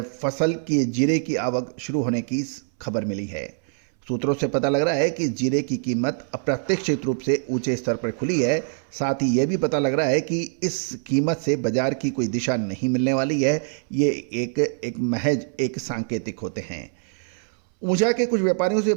फसल की जीरे की आवक शुरू होने की खबर मिली है। सूत्रों से पता लग रहा है कि जीरे की कीमत अप्रत्याशित रूप से ऊंचे स्तर पर खुली है। साथ ही यह भी पता लग रहा है कि इस कीमत से बाजार की कोई दिशा नहीं मिलने वाली है। ये एक महज एक सांकेतिक होते हैं। ऊंचा के कुछ व्यापारियों से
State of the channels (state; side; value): silent; left; 62 dB below the other